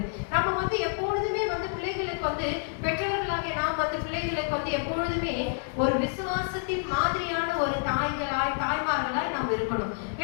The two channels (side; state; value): right; silent; 59 dB below the other